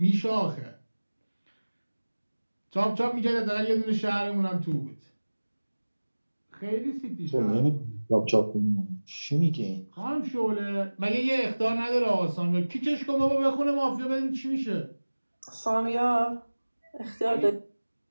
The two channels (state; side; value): inverted; both; correlation -1.00